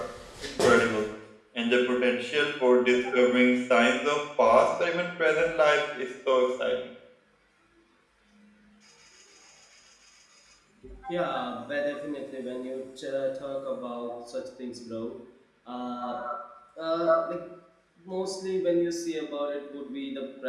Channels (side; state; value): both; identical; correlation 1.00